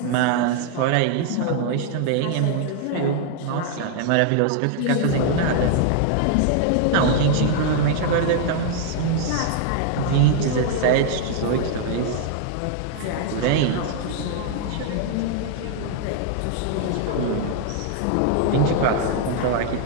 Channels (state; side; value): different; both; correlation 0.00